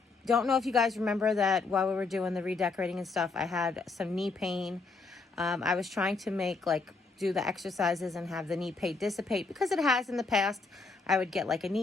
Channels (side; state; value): right; quieter; 4.1 dB